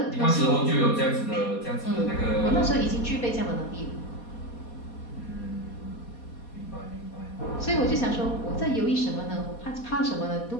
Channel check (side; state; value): right; late; 4.2 ms